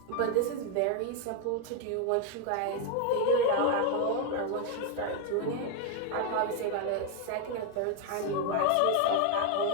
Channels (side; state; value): both; different; correlation 0.01